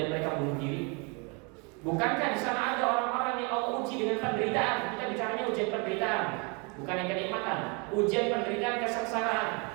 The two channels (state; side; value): quieter; left; 32.5 dB